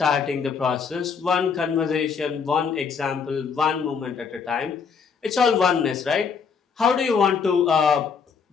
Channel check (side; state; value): right; quieter; 6.0 dB